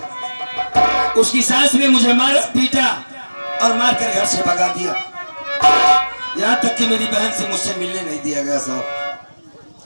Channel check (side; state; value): both; inverted; correlation -1.00